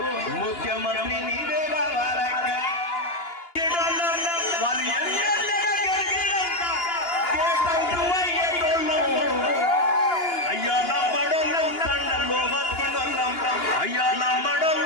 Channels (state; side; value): late; right; 2.9 ms